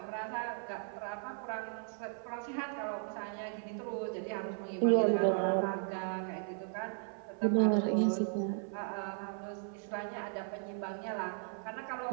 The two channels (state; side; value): silent; left; 54 dB below the other